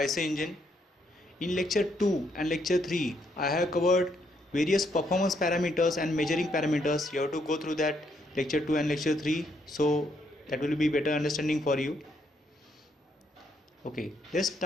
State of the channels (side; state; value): both; normal; correlation 0.74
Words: engine. In lecture 2 and lecture 3 I have covered various performance parameters and measuring parameters. You have to go through that lecture 2 and lecture 3, so that will be better understanding for you. Okay, let's